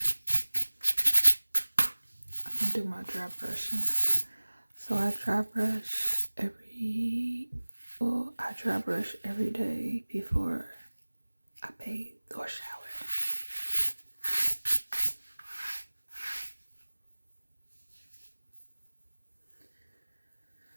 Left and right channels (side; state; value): both; inverted; correlation -1.00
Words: do my dry brushing. So I dry brush every day before I bathe or shower.